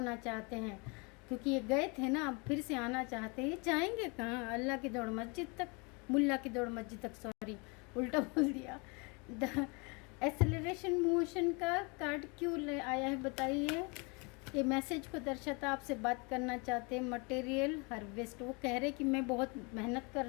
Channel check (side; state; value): right; quieter; 30.4 dB